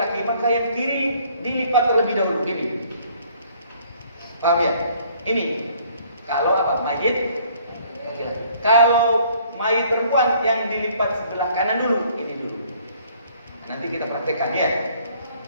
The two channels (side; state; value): both; inverted; correlation -0.60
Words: maka yang kiri dilipat terlebih dahulu ini. Paham ya? Ini kalau apa? Mayit laki-laki. Kalau mayit perempuan yang dilipat sebelah kanan dulu, ini dulu. Nanti kita praktekkan ya.